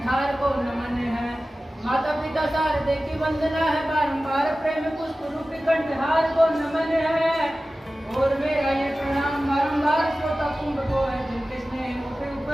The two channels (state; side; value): normal; both; correlation 0.96